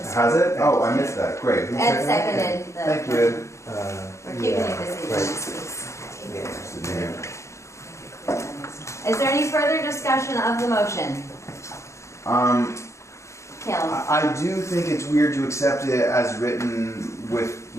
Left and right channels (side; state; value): right; late; 0.14 ms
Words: Has it? Oh, I missed that. Great. Who Ed seconded? seconded the. Thank you, Ed. We're keeping it busy. Yeah. Is there any further discussion of the motion? Caleb? I do think it's weird to accept it as written with